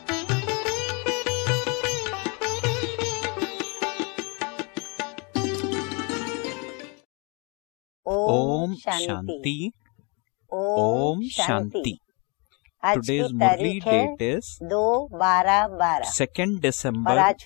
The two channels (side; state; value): right; quieter; 32.0 dB